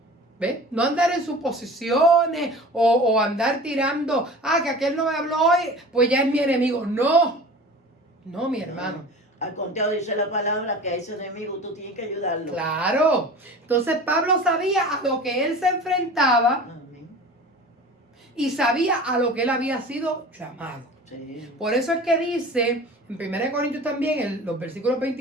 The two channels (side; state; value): both; normal; correlation 0.39